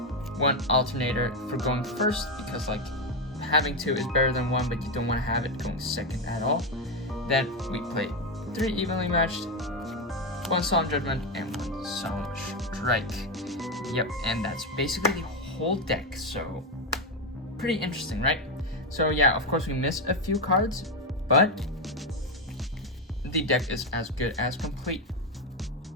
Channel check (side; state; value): both; normal; correlation 0.09